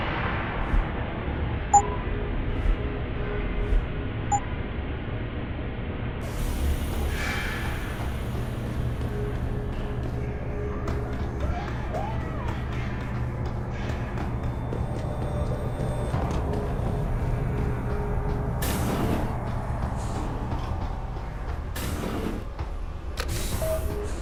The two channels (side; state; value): both; identical; correlation 1.00